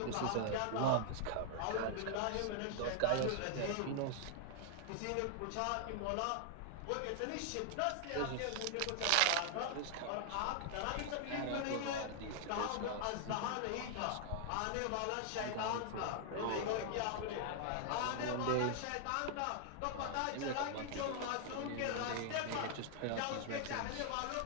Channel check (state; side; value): different; both; correlation 0.00